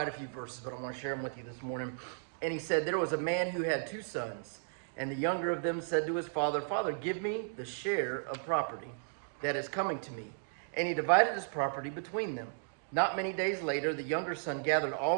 a few verses, but I want to share them with you this morning. And he said, there was a man who had 2 sons, and the younger of them said to his father, Father, give me the share of property that is coming to me. And he divided his property between them. Not many days later, the younger son gathered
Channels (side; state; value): left; silent; digital silence